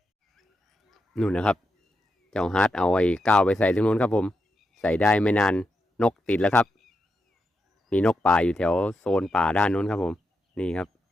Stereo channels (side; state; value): both; normal; correlation 0.85